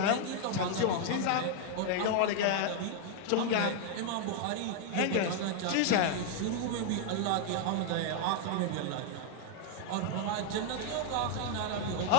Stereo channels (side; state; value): both; different; correlation 0.00